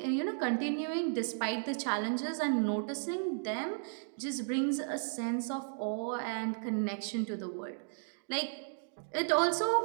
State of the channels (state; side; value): silent; left; digital silence